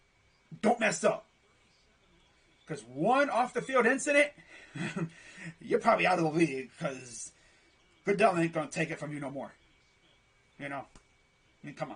Don't mess up. Because one off-the-field incident, you're probably out of the league, because Goodell ain't going to take it from you no more. I mean, come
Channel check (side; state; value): both; identical; correlation 1.00